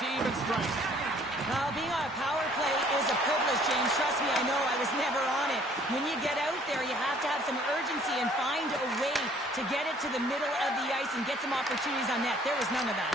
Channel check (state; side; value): normal; both; correlation 0.58